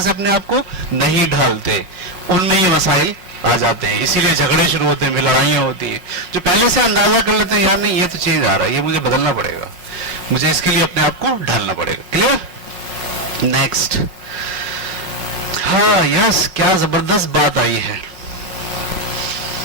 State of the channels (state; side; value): late; left; 5.5 ms